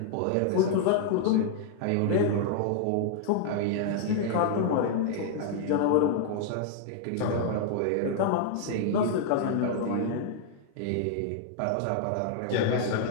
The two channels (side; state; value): both; different; correlation -0.01